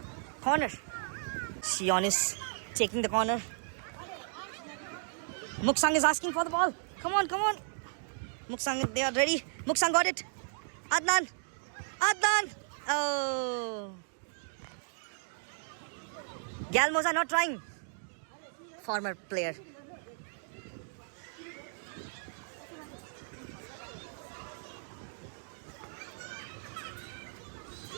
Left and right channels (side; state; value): left; silent; digital silence